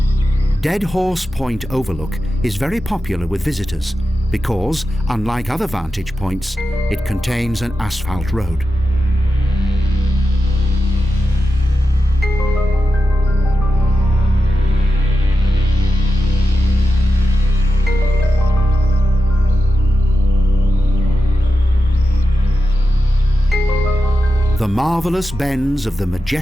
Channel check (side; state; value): both; normal; correlation 0.91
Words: Dead Horse Point Overlook is very popular with visitors because, unlike other vantage points, it contains an asphalt road. The marvellous bends of the